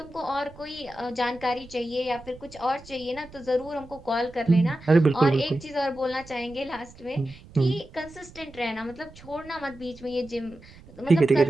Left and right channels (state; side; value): noise; right; rumble, 20 dB below the sound